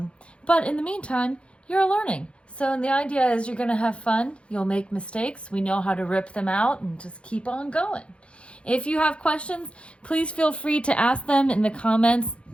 in the meantime, you're learning. So the idea is you're going to have fun. You'll make mistakes. We know how to rip them out and just keep on going. If you have questions, please feel free to ask them in the comments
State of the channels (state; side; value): late; right; 0.059 ms